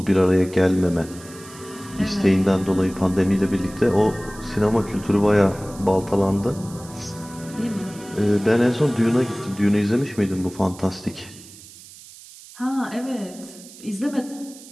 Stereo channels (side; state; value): right; noise; hiss, 19 dB below the sound